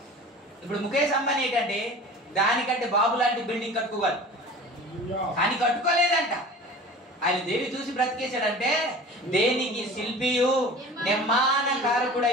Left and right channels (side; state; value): both; normal; correlation 0.39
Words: ఇప్పుడు ముఖేష్ అంబానీ ఏంటంటే దానికంటే బాబు లాంటి బిల్డింగ్ కట్టుకోవాలి. కానీ కట్టుకోలేదంట. ఆయన దేని చూసి బ్రతికేశాడంటే, దేనికి శిల్పియు